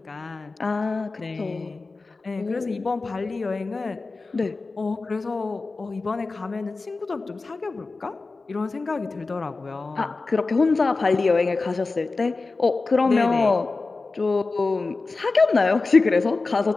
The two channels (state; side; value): quieter; right; 3.8 dB